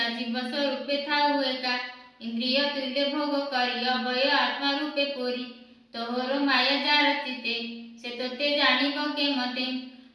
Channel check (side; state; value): both; identical; correlation 1.00